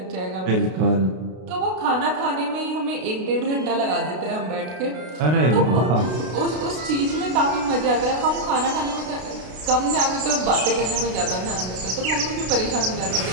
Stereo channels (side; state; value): left; late; 32 ms